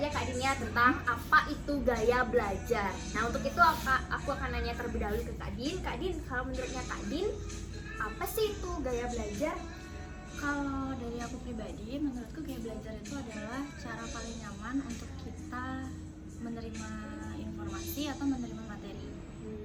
Kak Dinda tentang apa itu gaya belajar. Nah, untuk itu aku akan nanya terlebih dahulu ke Kak Din. Kak Din, kalau menurutnya Kak Din, apa sih itu gaya belajar? Kalau dari aku pribadi, menurutku gaya belajar itu adalah cara paling nyaman untuk kita menerima informasi atau menerima materi.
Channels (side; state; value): both; identical; correlation 1.00